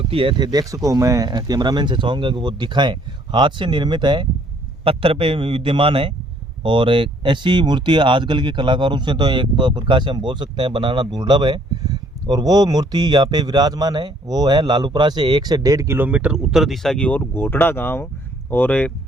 है। थे देख सको, मैं कैमरामैन से चाहूँगा कि वो दिखाएं, हाथ से निर्मित है, पत्थर पे विद्यमान है और ऐसी मूर्ति आजकल के कलाकारों से तो एक प्रकार से हम बोल सकते हैं बनाना दुर्लभ है। और वो मूर्ति यहाँ पे विराजमान है, वो है लालूपुरा से 1 से 1.5 किलोमीटर उत्तर दिशा की ओर घोटड़ा गांव और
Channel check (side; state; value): both; normal; correlation 0.62